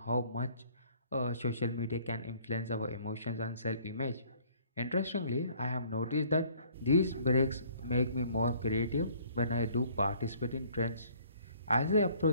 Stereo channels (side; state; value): both; inverted; correlation -0.58